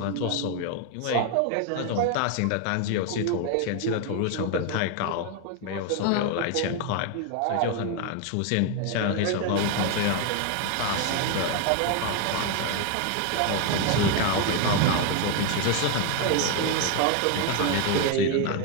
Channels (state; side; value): different; both; correlation 0.01